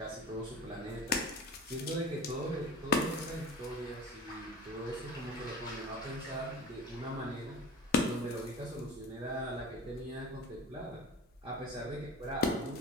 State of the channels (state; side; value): normal; both; correlation 0.37